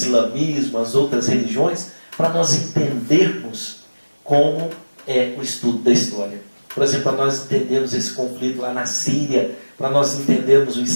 as outras religiões, para nós entendermos como é o estudo da história. Por exemplo, para nós entendermos esse conflito lá na Síria, para nós entendermos o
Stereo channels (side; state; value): both; inverted; correlation -1.00